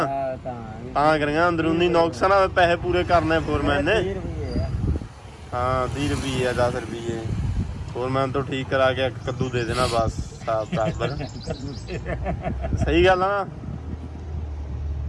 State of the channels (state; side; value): identical; both; correlation 1.00